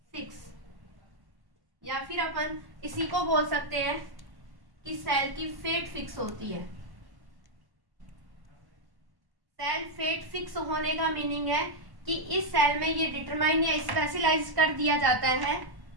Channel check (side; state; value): left; late; 1.1 ms